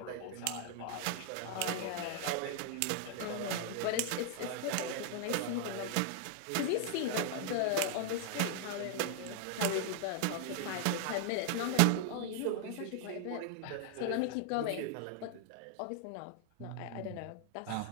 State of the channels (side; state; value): both; different; correlation 0.00